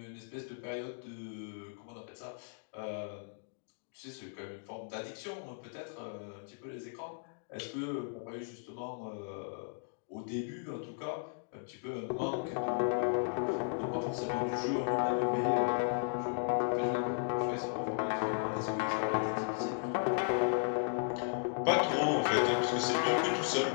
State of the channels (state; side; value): silent; right; digital silence